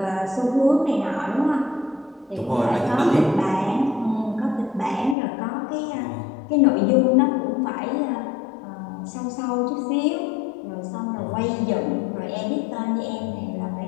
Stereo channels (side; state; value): right; drops out; at 5.2 s